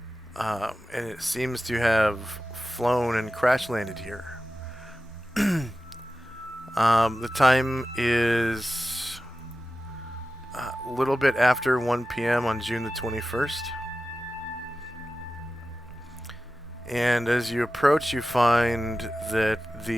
And it seems to have flown and crash landed here. The time is a little bit after 1 p.m. on June the 21st. And as you approach, you find that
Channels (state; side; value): normal; both; correlation 0.94